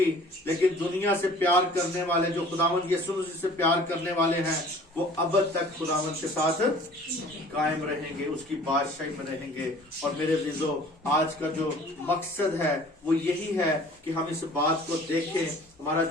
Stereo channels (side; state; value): both; normal; correlation 0.49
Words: لیکن دنیا سے پیار کرنے والے جو خداوند یسوع مسیح سے پیار کرنے والے ہیں وہ اب تک خداوند کے ساتھ قائم رہیں گے، اس کی بادشاہی میں رہیں گے۔ اور میرے عزیزو آج کا جو مقصد ہے وہ یہی ہے کہ ہم اس بات کو دیکھیں۔ ہمارا